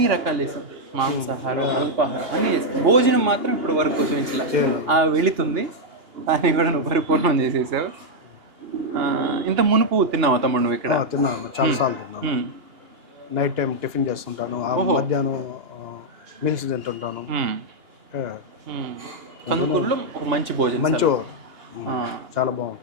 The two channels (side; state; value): left; late; 2.8 ms